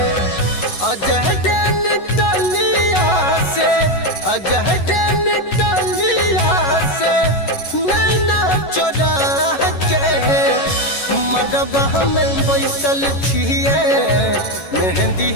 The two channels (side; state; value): right; late; 11 ms